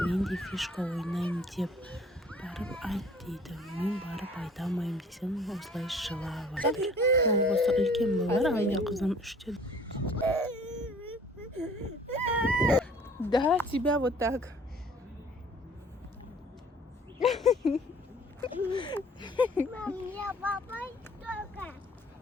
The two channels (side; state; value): both; normal; correlation 0.52